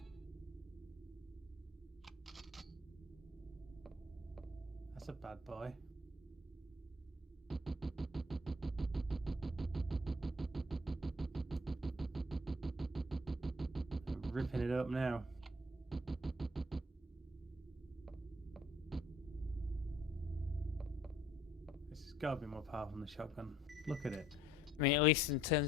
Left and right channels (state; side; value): normal; both; correlation 0.60